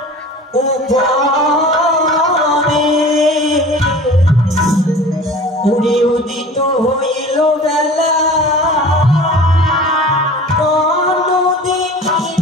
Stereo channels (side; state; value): both; normal; correlation 0.41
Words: উপরে উড়ে উদিত হইল বেলা।